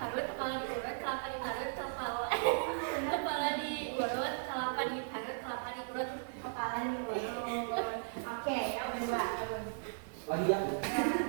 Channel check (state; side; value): silent; left; 53 dB below the other